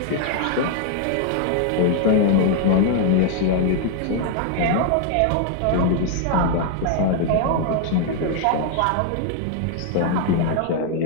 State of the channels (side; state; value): both; different; correlation 0.00